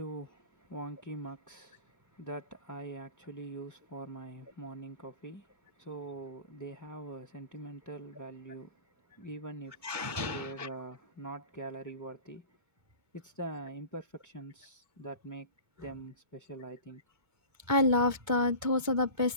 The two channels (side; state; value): left; late; 2.2 ms